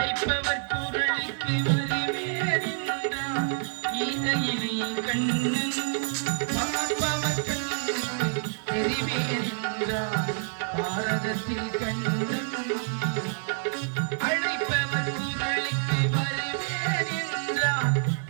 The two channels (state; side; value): silent; left; 60 dB below the other